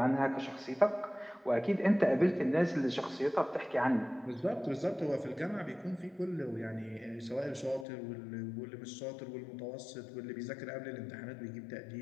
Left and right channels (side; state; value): right; drops out; at 7.9 s